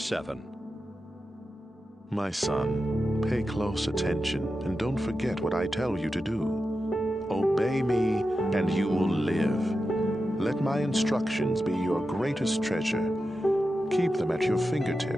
My son, pay close attention and don't forget what I tell you to do. Obey me and you will live. Let my instructions be your greatest treasure. Keep them at your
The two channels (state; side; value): normal; both; correlation 0.91